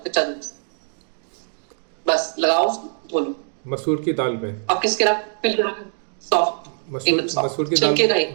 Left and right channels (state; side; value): silent; left; digital silence